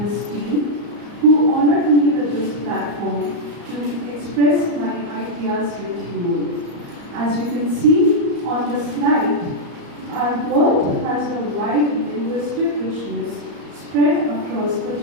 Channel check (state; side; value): late; left; 34 ms